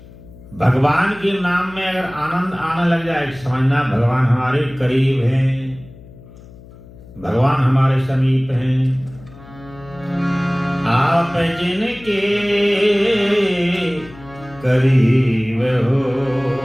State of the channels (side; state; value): left; noise; hum, 20 dB below the sound